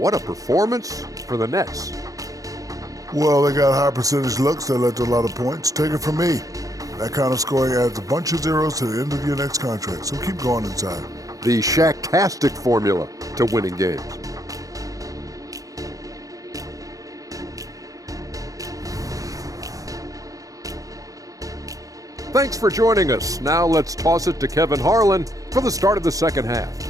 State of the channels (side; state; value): left; late; 0.17 ms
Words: a performance for the Nets. Well, they got high percentage looks that led to a lot of points. Take it from me. That kind of scoring adds a bunch of zeros to the end of your next contract, so keep going inside. The Shaq-tastic formula to winning games. Thanks for joining us. Now let's toss it to Kevin Harlan for the start of the second half.